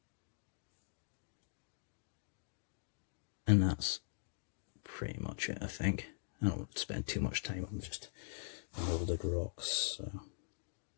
And that's pretty much it, I think. I don't spend too much time on just molded rocks. So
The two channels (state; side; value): silent; right; digital silence